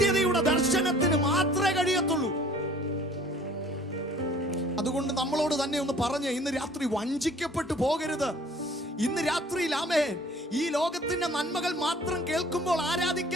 ദർശനത്തിന് മാത്രമേ കഴിയത്തുള്ളൂ. അതുകൊണ്ട് നമ്മളോട് തന്നെ ഒന്ന് പറഞ്ഞ് ഇന്ന് രാത്രി വഞ്ചിക്കപ്പെട്ടു പോകരുത്. ഇന്ന് രാത്രിയിൽ ഈ ലോകത്തിന്റെ നന്മകൾ മാത്രം കേൾക്കുമ്പോൾ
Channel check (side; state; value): both; normal; correlation 0.52